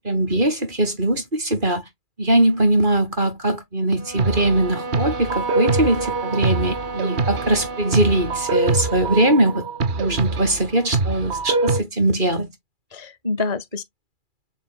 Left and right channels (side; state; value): left; late; 2.5 ms